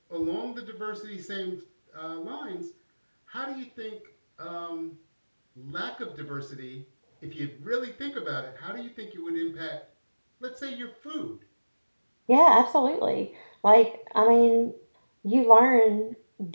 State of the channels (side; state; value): both; inverted; correlation -1.00